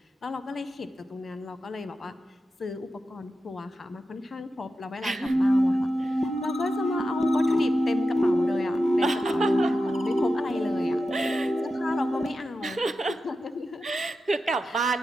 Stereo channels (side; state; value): both; normal; correlation 0.91